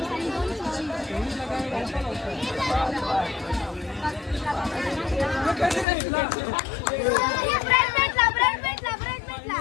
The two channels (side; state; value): right; drops out; at 5.9 s